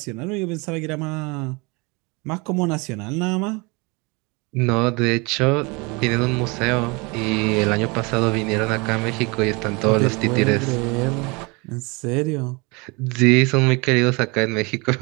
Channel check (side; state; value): left; quieter; 28.0 dB